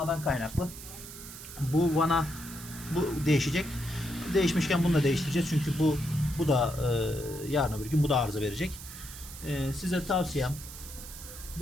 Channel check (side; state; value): right; noise; hiss, 13 dB below the sound